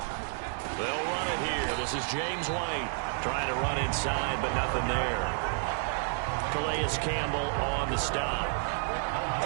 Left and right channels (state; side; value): silent; left; 58 dB below the other